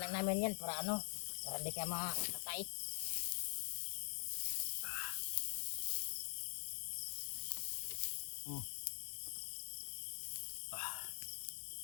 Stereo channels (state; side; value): silent; right; digital silence